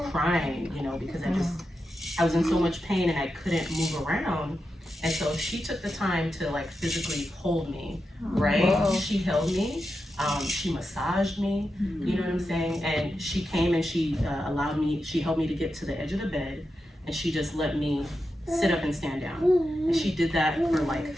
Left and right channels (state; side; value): normal; both; correlation 0.89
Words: crying, because I was in so much pain and I couldn't move around. And so she took the time to like physically hold me, right? Whoa. She held me, she massaged me, you know what I'm saying? And she came and she she helped me to get to the edge of the bed, and she just let me sit up and stand down. And she did that for